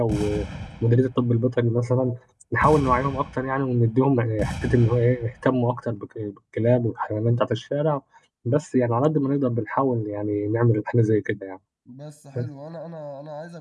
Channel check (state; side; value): identical; both; correlation 1.00